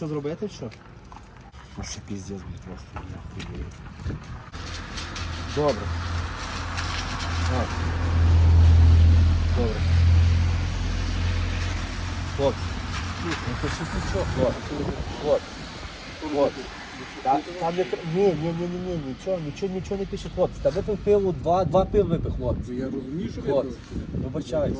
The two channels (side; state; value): both; identical; correlation 1.00